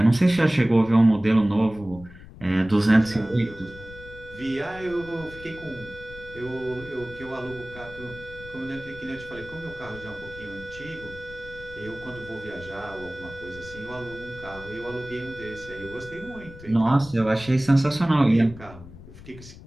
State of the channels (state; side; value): noise; left; rumble, 17 dB below the sound